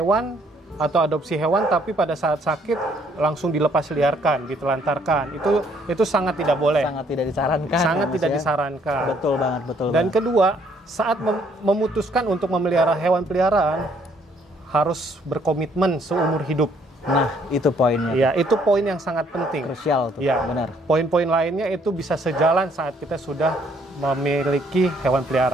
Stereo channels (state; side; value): normal; both; correlation 0.66